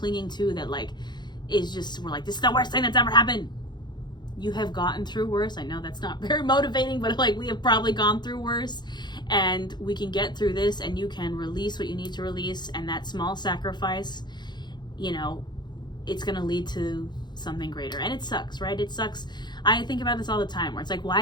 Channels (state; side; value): late; right; 0.21 ms